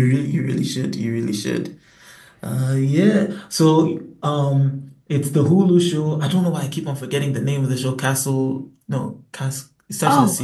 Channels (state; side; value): identical; both; correlation 1.00